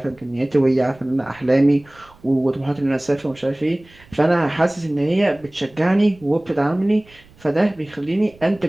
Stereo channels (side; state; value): right; noise; rumble, 27 dB below the sound